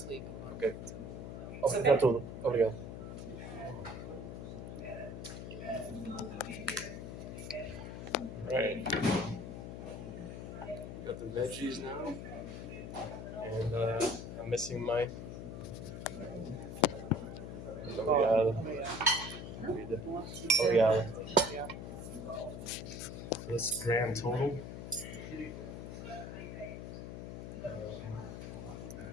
leave. Ok. Obrigado tudo. Obrigado. Right. Got the veggies now. And I'm missing my. Obrigado. Obrigado. So that's the grand total.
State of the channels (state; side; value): noise; left; hum, 8 dB below the sound